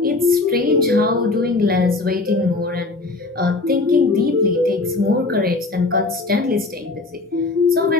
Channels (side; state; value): right; quieter; 3.4 dB